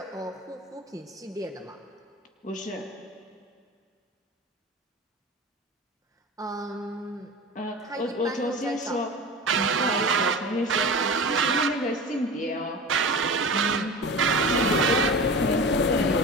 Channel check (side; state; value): both; normal; correlation 0.32